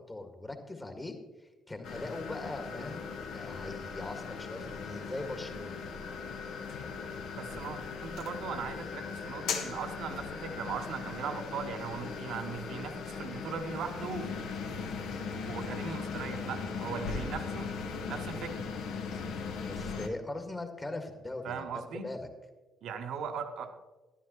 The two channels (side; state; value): both; normal; correlation 0.63